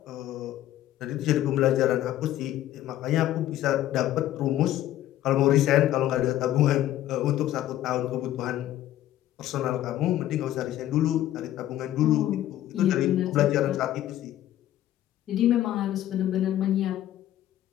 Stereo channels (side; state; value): right; quieter; 13.2 dB